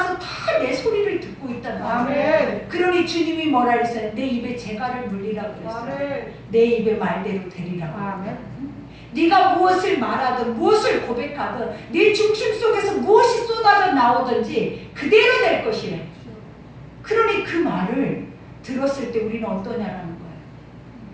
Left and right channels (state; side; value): identical; both; correlation 1.00